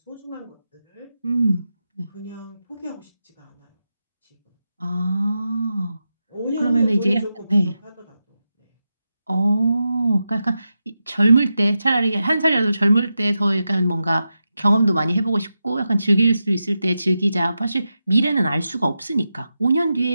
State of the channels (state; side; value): inverted; both; correlation -0.90